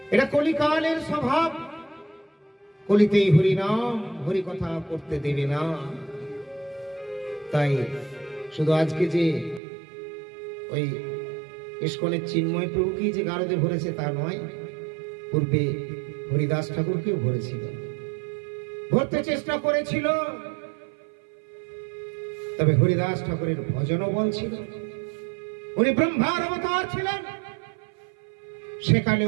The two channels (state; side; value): drops out; left; at 9.6 s